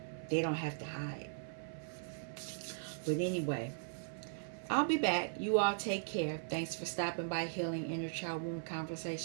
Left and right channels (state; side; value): silent; left; 52 dB below the other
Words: They don't have to hide. But anyway, I'll be back. You all take care. Thanks for stopping by Healing Inner Child Wound